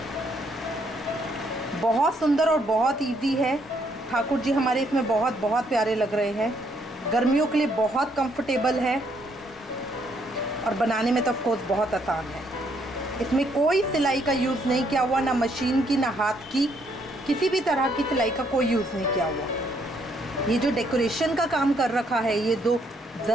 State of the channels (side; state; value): both; normal; correlation 0.71